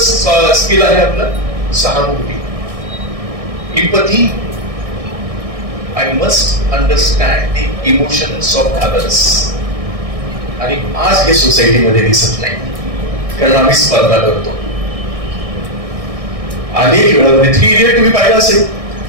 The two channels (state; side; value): late; left; 1.6 ms